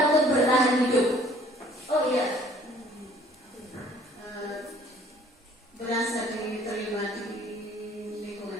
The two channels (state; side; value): normal; both; correlation 0.56